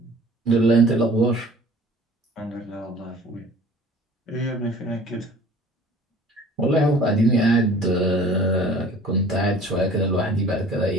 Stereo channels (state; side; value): normal; both; correlation 0.48